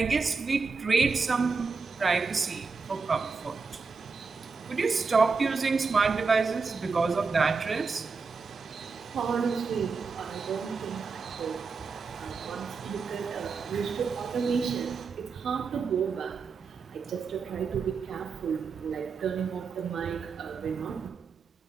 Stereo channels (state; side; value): quieter; left; 4.9 dB